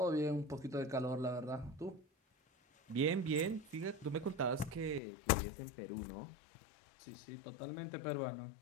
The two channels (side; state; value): right; drops out; at 5.0 s